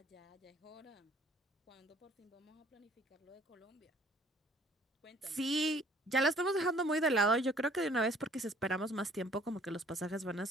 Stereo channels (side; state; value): both; normal; correlation 0.57